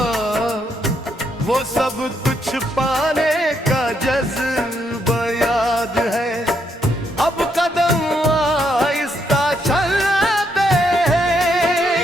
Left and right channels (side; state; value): both; normal; correlation 0.76